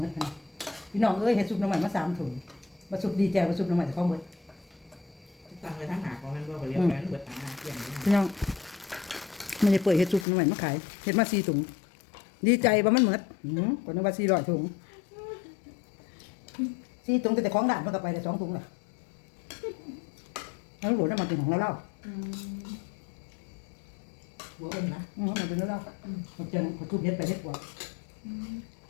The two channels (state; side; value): drops out; right; at 10.2 s